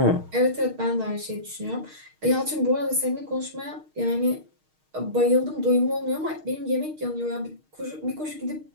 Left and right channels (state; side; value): late; left; 6.5 ms